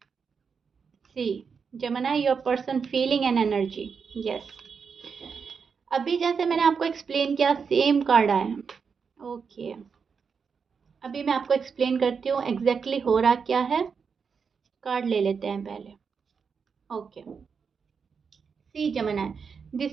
सी Gemini, your person feeling and energy. Yes. अभी जैसे मैंने आपको एक्सप्लेन किया, सेम कार्ड आया. ओके, अभी मैं आपको एक्सप्लेन करती हूँ एग्जैक्टली हो रहा क्या है. कार्ड ले लेते हैं पहले. Okay, see Gemini,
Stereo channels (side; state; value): left; quieter; 5.9 dB